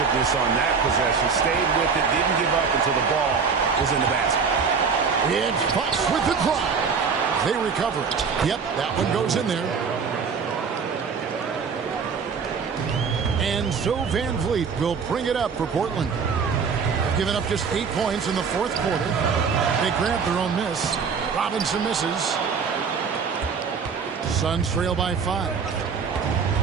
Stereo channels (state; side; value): quieter; left; 5.8 dB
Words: on that possession? Stayed with it, didn't give up until the ball was in the basket. It's Fox with the drive. They recover it. Yep, that one goes in there. And so Van Vliet will bring it up for Portland. They've given up just 8 points in the fourth quarter. They grab their own miss. Robinson misses. Suns trail by 5.